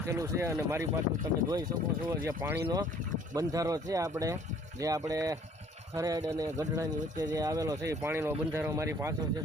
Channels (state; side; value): normal; both; correlation 0.57